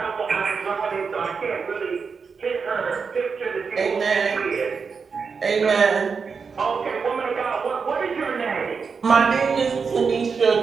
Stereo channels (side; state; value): left; quieter; 5.5 dB